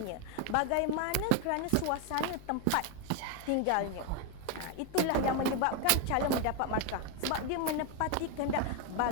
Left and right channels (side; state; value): both; different; correlation 0.01